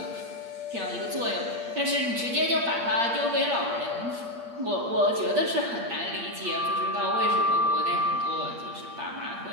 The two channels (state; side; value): late; left; 8.6 ms